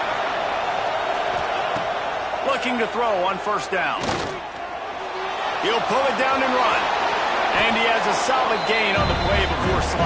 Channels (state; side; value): identical; both; correlation 1.00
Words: Looking to throw on first down. He'll pull it down and run. And he has a solid gain on the play before